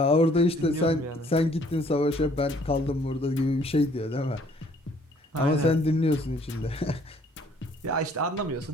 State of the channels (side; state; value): both; normal; correlation 0.60